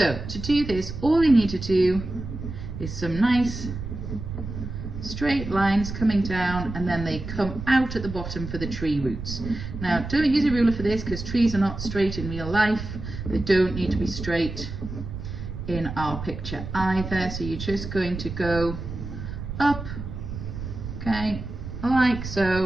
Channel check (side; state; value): right; noise; rumble, 8 dB below the sound